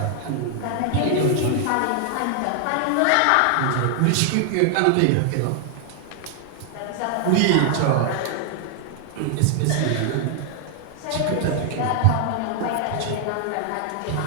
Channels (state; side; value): different; both; correlation 0.00